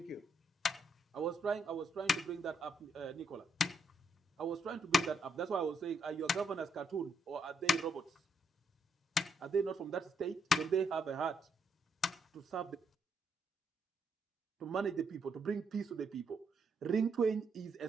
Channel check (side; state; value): both; normal; correlation 0.75